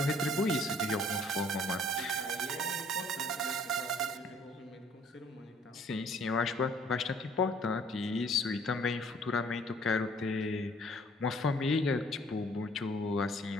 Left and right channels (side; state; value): both; normal; correlation 0.59